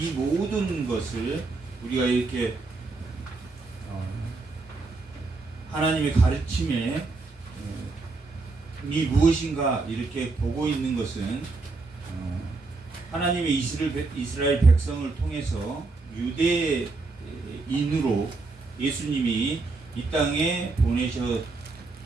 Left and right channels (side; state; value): left; quieter; 3.7 dB